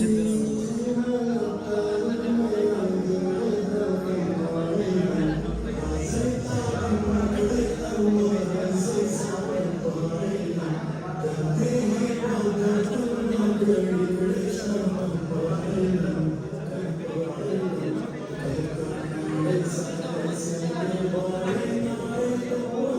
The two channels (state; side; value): identical; both; correlation 1.00